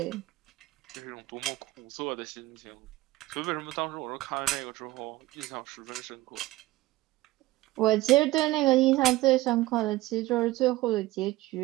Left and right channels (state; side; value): quieter; left; 18.0 dB